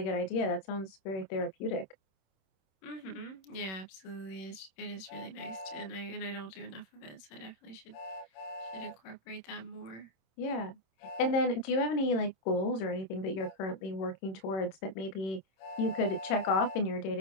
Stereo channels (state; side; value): late; right; 26 ms